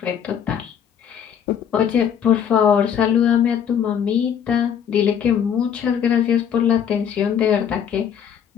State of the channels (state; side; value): quieter; right; 8.4 dB